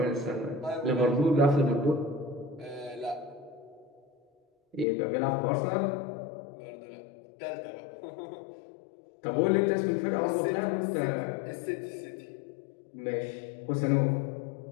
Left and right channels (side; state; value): right; drops out; at 4.9 s